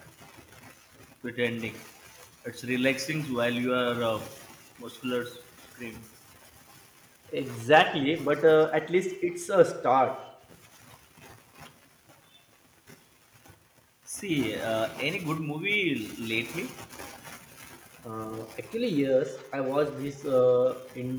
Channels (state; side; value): identical; both; correlation 1.00